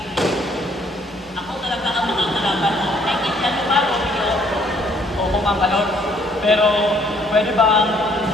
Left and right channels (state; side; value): normal; both; correlation 0.64